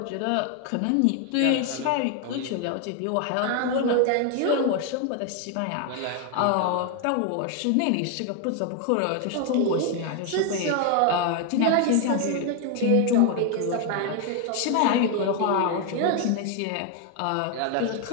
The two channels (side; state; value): both; different; correlation 0.01